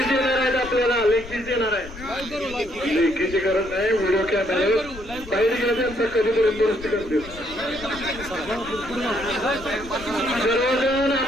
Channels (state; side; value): noise; left; rumble, 15 dB below the sound